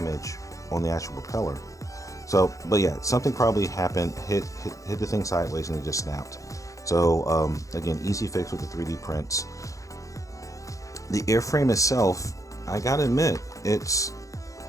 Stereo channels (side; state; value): right; late; 0.16 ms